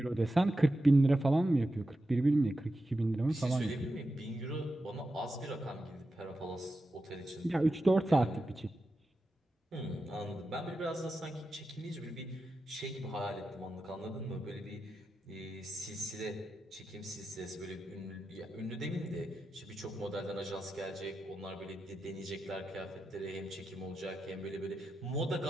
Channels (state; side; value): normal; both; correlation 0.90